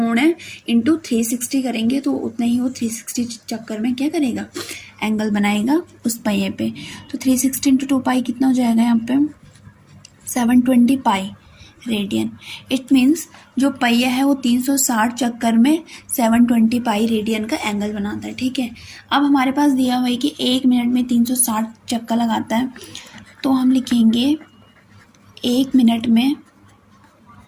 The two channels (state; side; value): identical; both; correlation 1.00